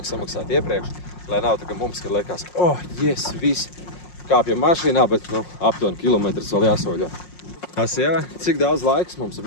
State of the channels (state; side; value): late; right; 5.6 ms